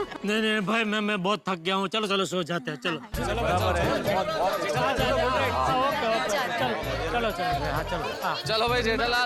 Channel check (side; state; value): both; identical; correlation 1.00